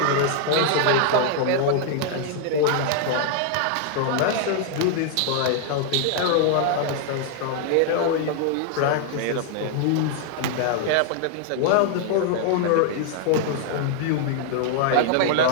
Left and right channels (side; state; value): both; different; correlation 0.00